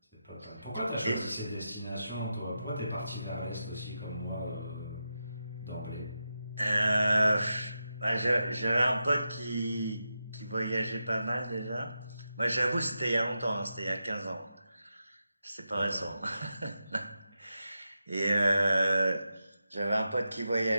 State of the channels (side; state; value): both; inverted; correlation -0.88